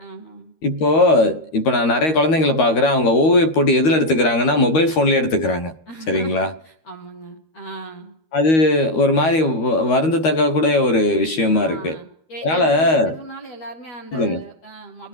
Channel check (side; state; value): right; late; 13 ms